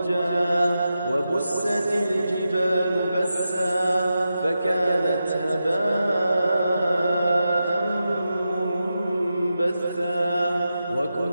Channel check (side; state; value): both; inverted; correlation -0.89